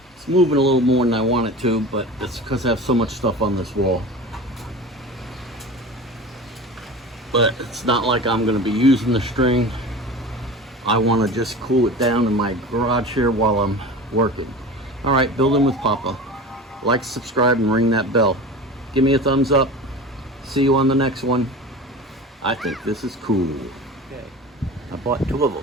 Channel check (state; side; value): normal; both; correlation 0.34